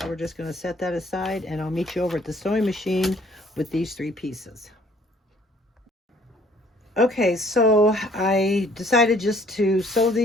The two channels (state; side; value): normal; both; correlation 0.59